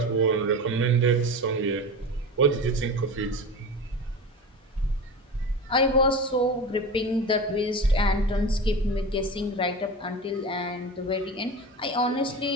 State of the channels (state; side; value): normal; both; correlation 0.29